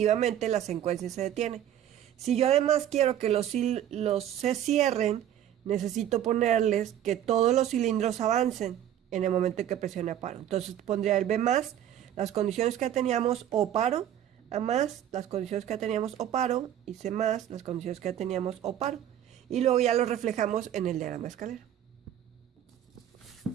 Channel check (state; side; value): quieter; left; 10.9 dB